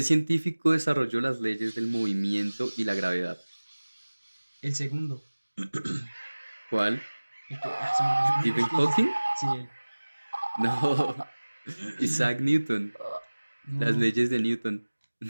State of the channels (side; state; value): both; inverted; correlation -1.00